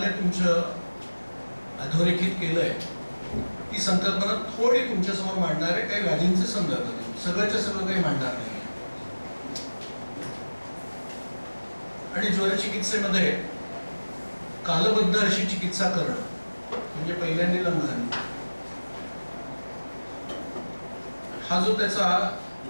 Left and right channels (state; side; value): inverted; both; correlation -1.00